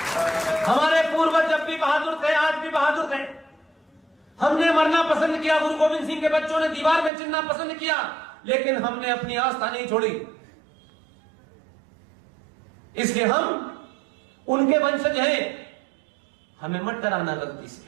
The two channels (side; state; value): left; drops out; at 7.1 s